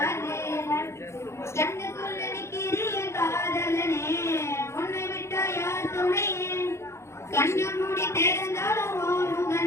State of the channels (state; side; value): late; right; 0.13 ms